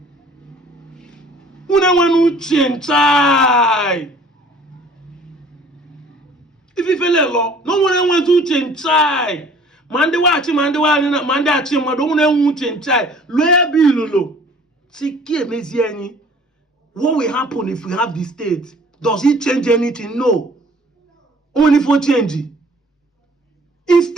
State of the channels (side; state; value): both; normal; correlation 0.52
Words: if you feel like no one wants to change. Mande achi, don't want to change. Lawyer Bilolo. What will happen if we have the state? Does it change anything? No. Only for changing.